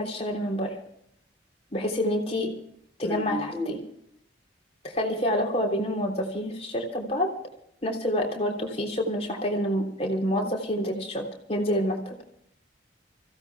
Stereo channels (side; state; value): both; normal; correlation 0.33